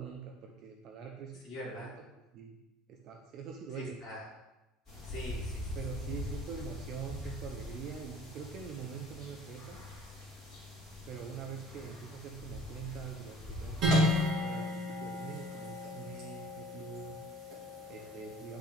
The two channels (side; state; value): both; normal; correlation 0.50